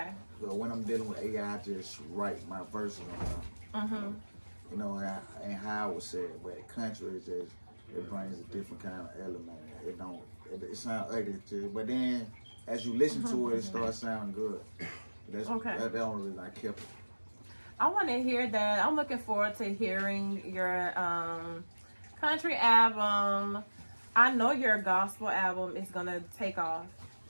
But when I'm dealing with AI, I just write my verses on them. You know, and how I would say it, but country is just, it brings a different kind of element. It sounds ugly too, but then as you listen to it, it starts sounding good. That's the only reason I kept it. I want to hear that. I'm looking forward to hearing your country album. I know your gospel album is gonna take off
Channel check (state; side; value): inverted; both; correlation -1.00